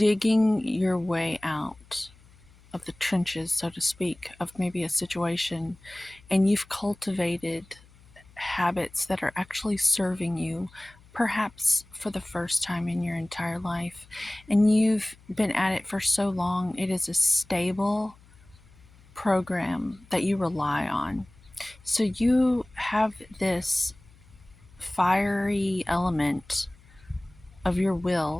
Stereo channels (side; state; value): left; noise; hum, 26 dB below the sound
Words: your way out of the trenches, so to speak, of maybe a situation, and you've cultivated habits that are actually serving you, perhaps for the first time in your entire life, and you've been at it for so long, it is a stable program that you rely on. So you have this fiery element of your